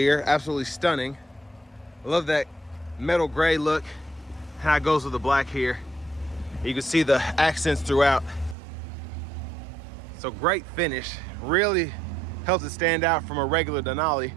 Absolutely stunning. I love that metal gray look, how it goes with the black here. You can see the accents throughout. So great finish. Really helps it stand out from a regular Denali.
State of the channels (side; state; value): left; drops out; at 8.6 s